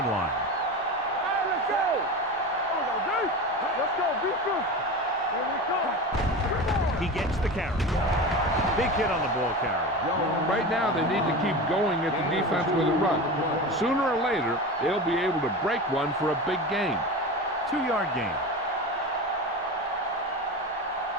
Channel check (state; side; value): normal; both; correlation 0.27